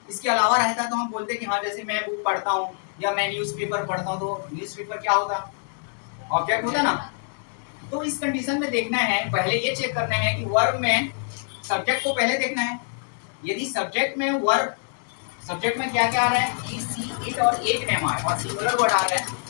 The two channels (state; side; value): silent; right; 62 dB below the other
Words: इसके अलावा रहता तो हम बोलते कि हाँ जैसे मैं बुक पढ़ता हूँ या मैं न्यूज़पेपर पढ़ता हूँ, तो न्यूज़पेपर क्या होता? ऑब्जेक्ट होता ना। तो इस कंडीशन में देखना है, पहले ये चेक करना है कि वर्ब में सब्जेक्ट को पहले देखना है। यदि सब्जेक्ट में वर्ब, सब्जेक्ट में क्या क्या आ रहा है? ही, सी, इट और एक नेम आ रहा है और सिंगुलर वर्ड आ रहा है,